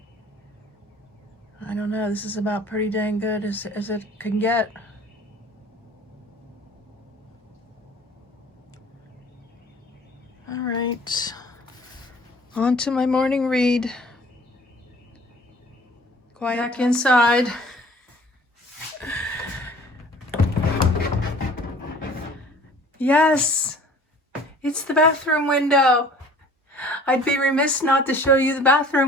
I don't know, this is about pretty dang good as it can get. All right, on to my morning read. Quiet back inside. Yes, it's the bathroom window. I'd be remiss not to show you the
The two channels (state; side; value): normal; both; correlation 0.49